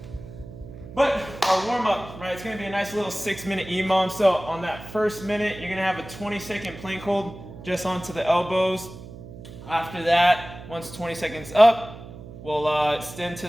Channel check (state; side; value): noise; right; hum, 15 dB below the sound